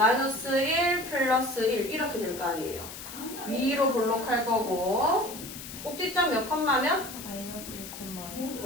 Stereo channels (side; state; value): left; noise; hiss, 12 dB below the sound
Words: 1 플러스 1 이렇게 될 거 아니에요. 위로 볼록할 거고 꼭지점 몇 컴마면? 마이너스 1,1.